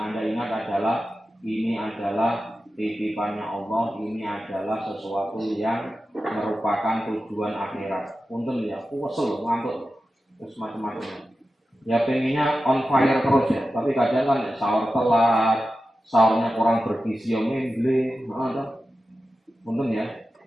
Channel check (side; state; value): both; normal; correlation 0.93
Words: ingat adalah ini adalah titipannya Allah, ini adalah sesuatu yang merupakan tujuan akhirat. Punten ya, kesel, ngantuk, terus macam-macam. Ya pengennya on fire terus ya, tapi kadang kan sahur telat, sahurnya kurang bergizi, memble, untung ya,